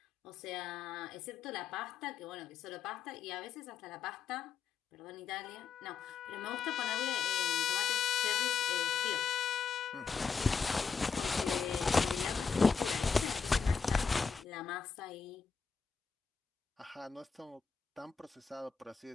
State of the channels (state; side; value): quieter; right; 5.9 dB